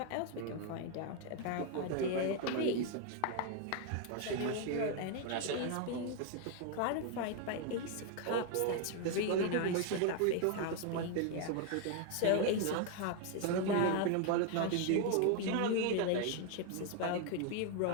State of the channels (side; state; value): both; different; correlation 0.00